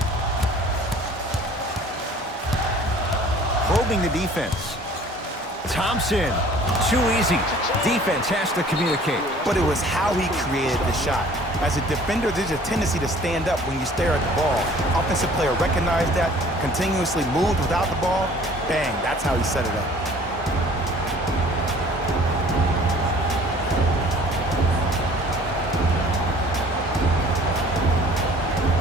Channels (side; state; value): both; normal; correlation 0.51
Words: Probing the defense. Thompson. Too easy. Defense has to communicate. But it was how he created the shot. As a defender, there's a tendency to stand up when you stare at the ball. Offensive player recognized that, continuously moved without the ball. Bang, that's how he set it up.